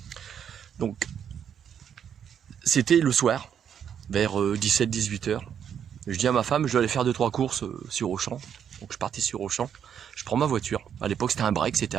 Donc, c'était le soir, vers 17-18 heures. Je dis à ma femme, je vais aller faire 2-3 courses sur Auchan. Donc je partais sur Auchan. Je prends ma voiture. À l'époque, c'était un break, c'était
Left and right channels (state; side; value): quieter; left; 8.4 dB